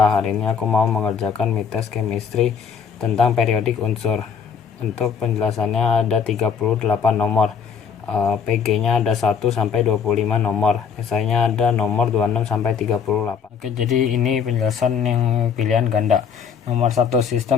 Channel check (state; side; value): quieter; right; 6.7 dB